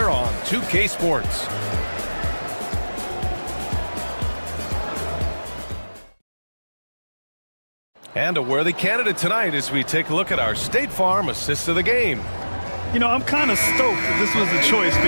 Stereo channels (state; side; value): inverted; both; correlation -1.00